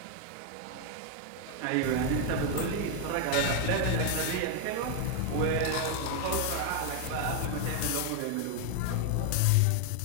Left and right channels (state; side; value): different; both; correlation 0.01